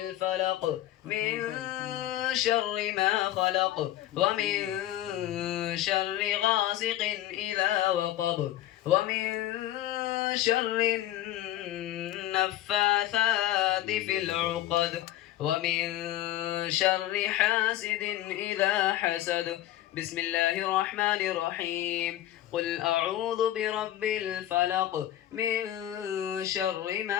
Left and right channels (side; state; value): right; quieter; 13.5 dB